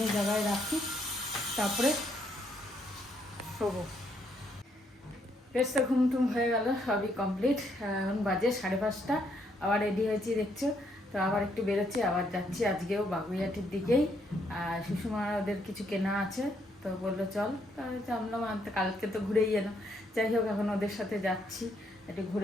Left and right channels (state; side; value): normal; both; correlation 0.73